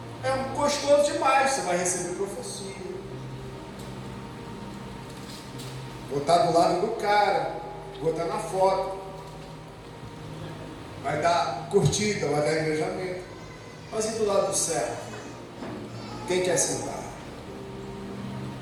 É gostoso demais. Você vai receber profecia, vou estar do lado do cara, vou estar na foto, vai dar curtida, vai dar engajamento. Mas e do lado do servo? Quem quer sentar?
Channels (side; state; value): both; identical; correlation 1.00